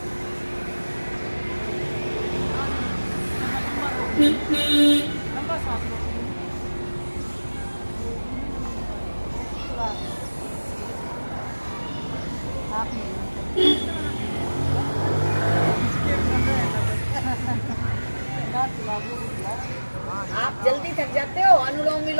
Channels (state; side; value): inverted; both; correlation -1.00